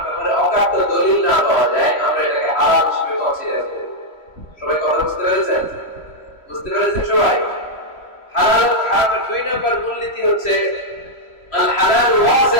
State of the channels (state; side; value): late; right; 3.0 ms